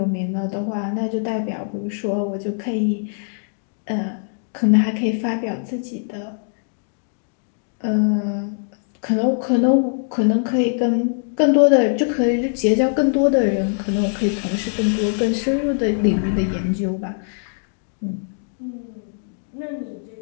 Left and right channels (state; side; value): silent; right; digital silence